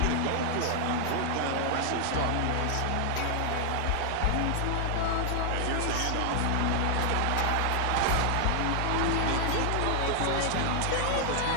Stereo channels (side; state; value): both; different; correlation 0.00